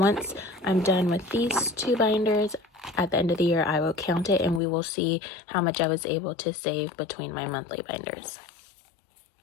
I'm done with these 2 binders, at the end of the year, I will count it and we will see how much I was able to save between my monthly binders.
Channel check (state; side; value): drops out; right; at 4.6 s